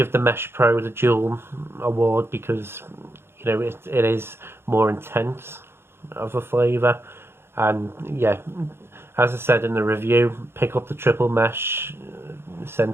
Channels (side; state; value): left; late; 0.12 ms